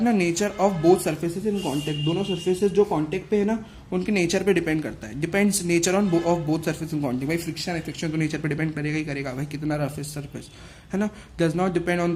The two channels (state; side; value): identical; both; correlation 1.00